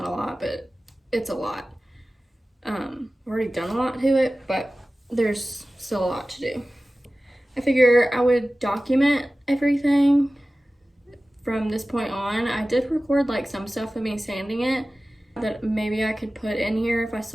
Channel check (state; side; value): normal; both; correlation 0.96